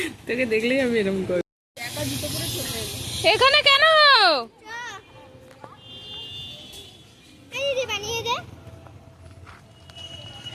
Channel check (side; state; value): both; identical; correlation 1.00